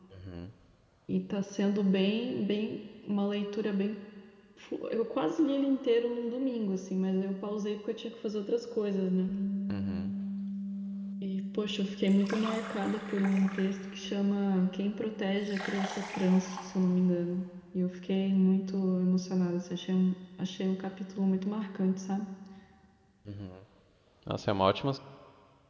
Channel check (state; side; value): identical; both; correlation 1.00